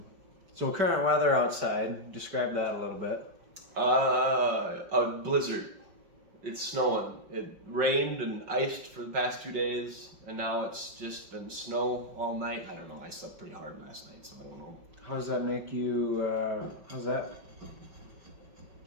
So current weather outside, describe that a little bit. A blizzard. It's snowing. It rained and iced for the past 2 days, and now it's just been snow all night. I don't know. I slept pretty hard last night, so I don't know. How does that make you? How's that?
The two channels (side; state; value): left; late; 5.5 ms